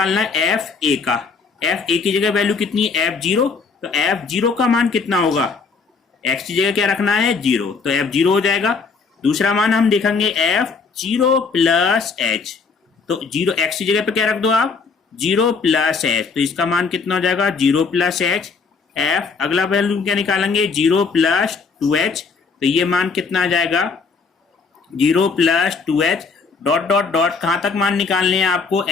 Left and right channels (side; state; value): right; quieter; 4.8 dB